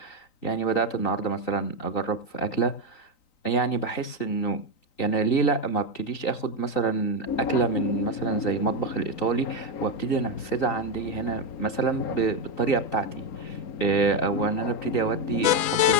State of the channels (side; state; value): right; late; 3.9 ms